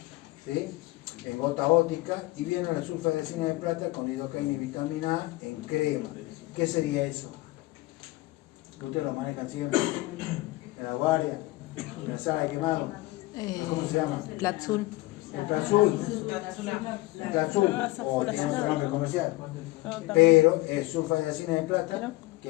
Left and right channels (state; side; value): quieter; right; 19.6 dB